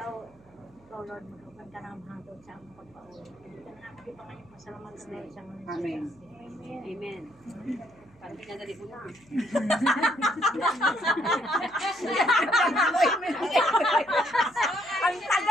Lord, magkakan ka ng hangtod sa among pagpauwi. Kita na natin pa ngayon. Masalamat sa Lord sa mga Amen. Amen. Parang pinadali ko na. Ang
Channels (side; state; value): right; noise; hum, 29 dB below the sound